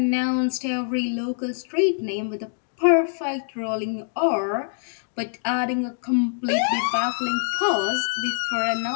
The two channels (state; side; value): silent; right; digital silence